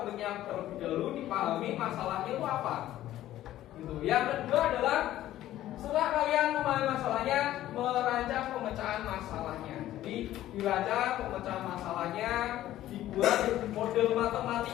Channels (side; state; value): right; quieter; 13.7 dB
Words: komiknya terlebih dahulu, dipahami masalahnya itu apa. Gitu. Yang kedua adalah setelah kalian memahami masalahnya, merancang pemecahan masalahnya. Jadi dirancang pemecahan masalahnya, dibuat model